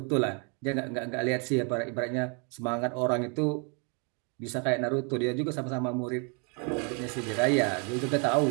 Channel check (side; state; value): left; quieter; 36.1 dB